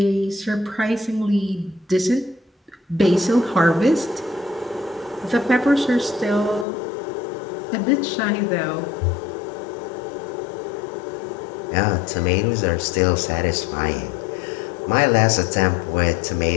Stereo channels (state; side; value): drops out; right; at 6.7 s